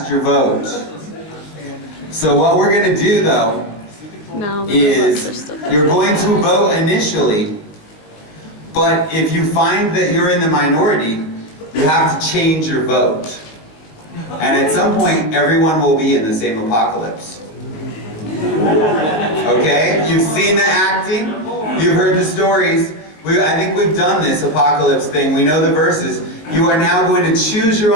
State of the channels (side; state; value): right; late; 19 ms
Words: your vote. So what we're gonna do though is you're going to vote initially, but if you find that you're in the minority, you have to change your vote. And at some point, everyone will be in the same apocalypse. Okay? You've seen the acting, you've heard the stories. I think we've done this apocalypse thing. We know the verses. You are now going to choose your